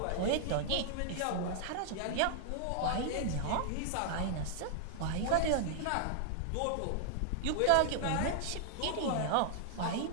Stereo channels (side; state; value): both; different; correlation 0.00